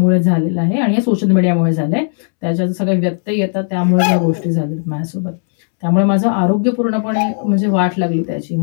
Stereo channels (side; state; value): right; silent; 69 dB below the other